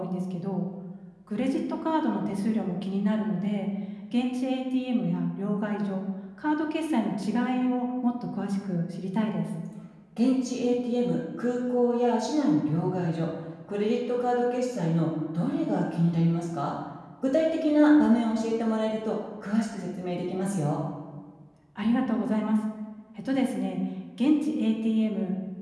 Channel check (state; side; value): identical; both; correlation 1.00